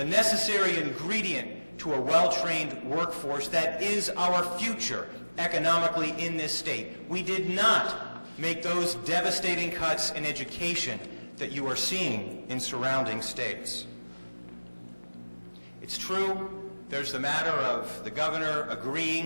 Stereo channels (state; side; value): inverted; both; correlation -1.00